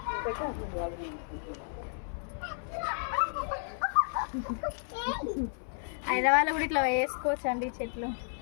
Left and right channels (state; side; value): silent; right; 56 dB below the other